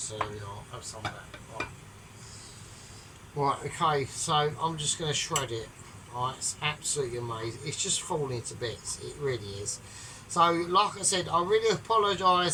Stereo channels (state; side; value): identical; both; correlation 1.00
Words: there we are. Have some of that. Right, okay, so I'm just going to shred it. Right, it's absolutely amazing. It's just falling to bits. It really is. So, like I said, I really